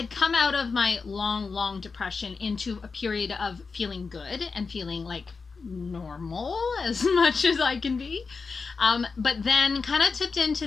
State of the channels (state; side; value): quieter; right; 4.7 dB